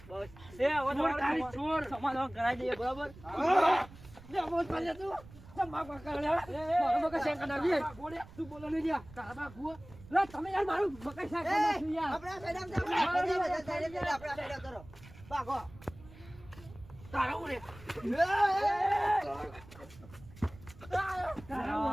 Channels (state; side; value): noise; right; rumble, 20 dB below the sound